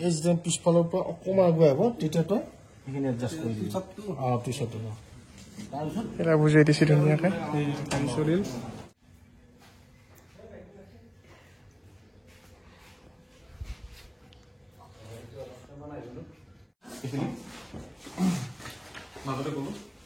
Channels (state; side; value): identical; both; correlation 1.00